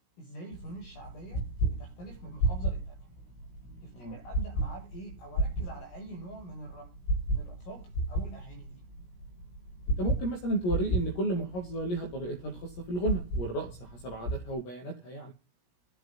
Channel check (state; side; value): late; right; 17 ms